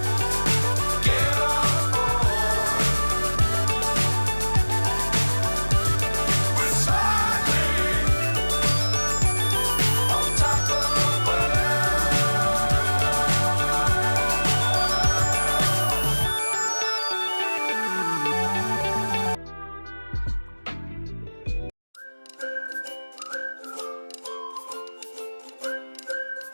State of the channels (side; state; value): both; inverted; correlation -1.00